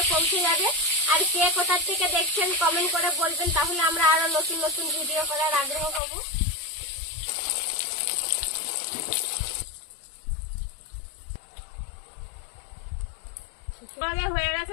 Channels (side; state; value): right; drops out; at 6.0 s